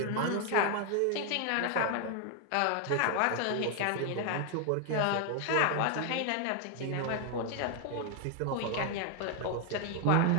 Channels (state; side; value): different; both; correlation 0.00